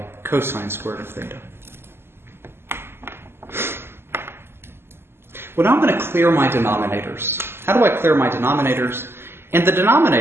cosine squared of theta. Well, now I'm going to clear my denominators. How do I clear my denominators? In the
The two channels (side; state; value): left; late; 0.12 ms